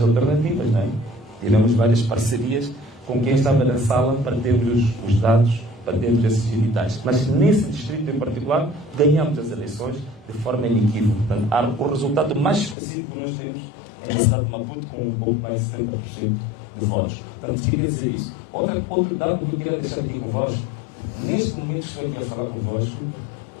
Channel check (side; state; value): right; drops out; at 12.8 s